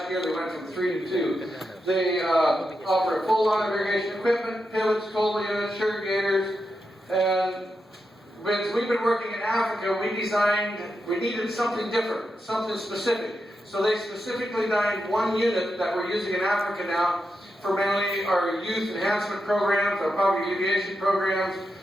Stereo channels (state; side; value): normal; both; correlation 0.87